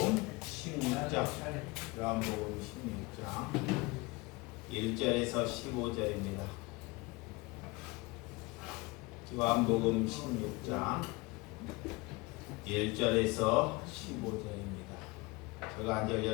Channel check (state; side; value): quieter; right; 24.1 dB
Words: 16장, 요한복음 16장 1절에서 15절입니다. 요한복음 16장 1절에서 15절입니다. 제가 한 절,